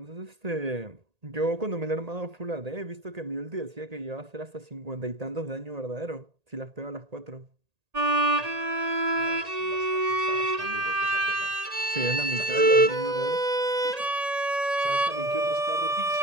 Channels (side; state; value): left; late; 1.8 ms